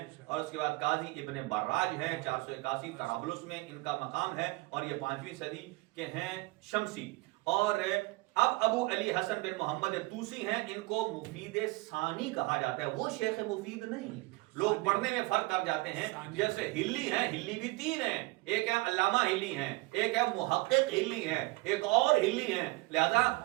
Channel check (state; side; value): quieter; left; 23.2 dB